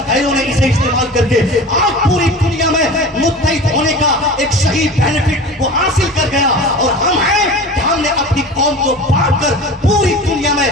गैरों ने इसे इस्तेमाल करके आज पूरी दुनिया में मुत्तहिद होने का एक सही बेनिफिट वो हासिल कर गया। और हम हैं कि हमने अपनी कौम को बांट कर पूरी दुनिया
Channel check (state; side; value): normal; both; correlation 0.36